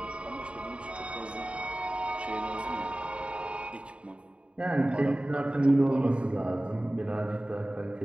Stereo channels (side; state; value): left; late; 0.060 ms